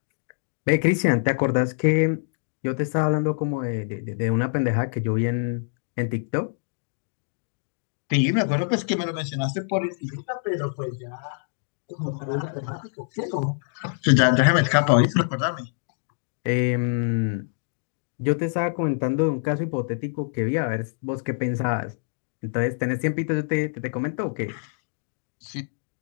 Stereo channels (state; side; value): silent; right; digital silence